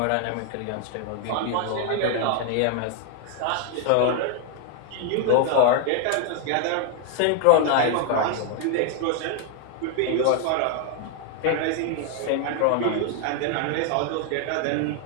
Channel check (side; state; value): both; different; correlation 0.00